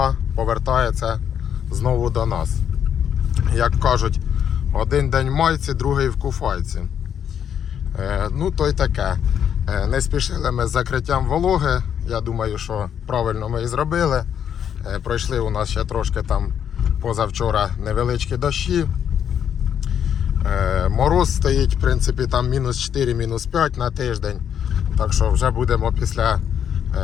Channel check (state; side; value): quieter; right; 8.7 dB